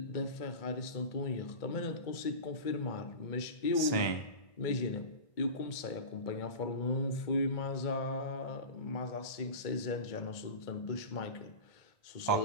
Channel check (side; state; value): right; late; 1.3 ms